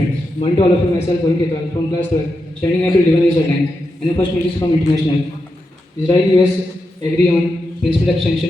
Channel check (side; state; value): both; normal; correlation 0.87